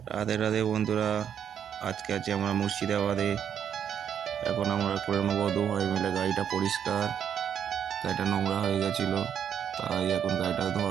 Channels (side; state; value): left; quieter; 8.7 dB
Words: রাধে রাধে বন্ধুরা, আজকে আছি আমরা মুর্শিদাবাদে। এখন আমরা করে নেবো দু ভাই মিলে গাড়িটা পরিষ্কার। গাড়িটা নোংরা হয়ে গেছিলো, তাই এখন গাড়িটা